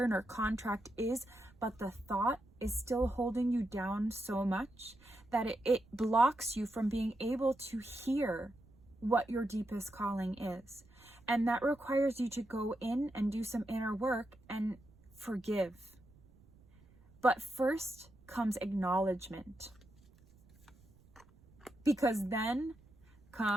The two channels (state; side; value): noise; right; rumble, 27 dB below the sound